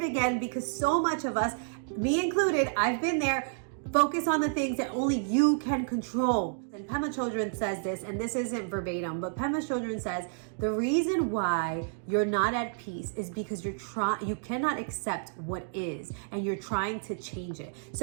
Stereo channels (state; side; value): silent; left; digital silence